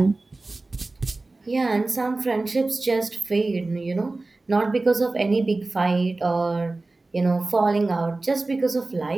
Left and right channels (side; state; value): left; quieter; 3.2 dB